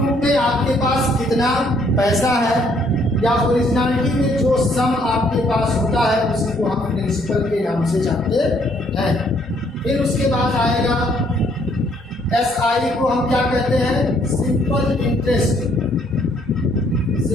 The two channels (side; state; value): both; normal; correlation 0.66